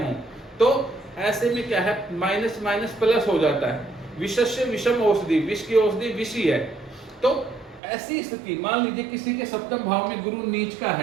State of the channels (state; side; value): drops out; left; at 7.8 s